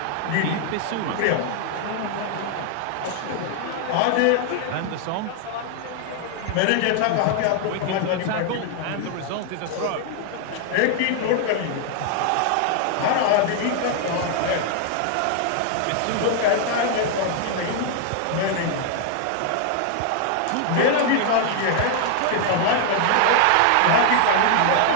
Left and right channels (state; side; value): different; both; correlation 0.00